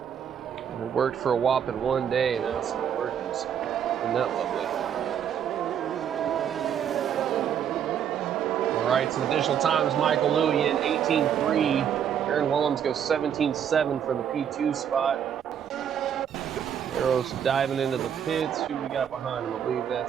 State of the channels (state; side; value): quieter; left; 8.7 dB